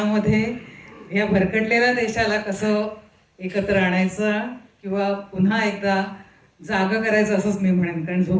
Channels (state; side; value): identical; both; correlation 1.00